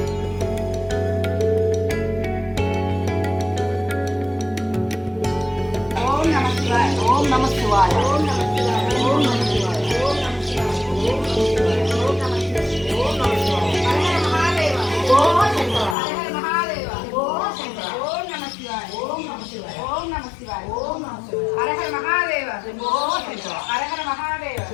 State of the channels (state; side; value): drops out; right; at 16.0 s